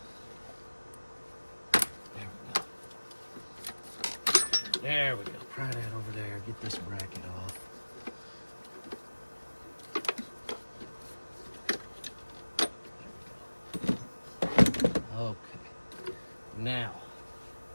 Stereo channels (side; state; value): both; inverted; correlation -1.00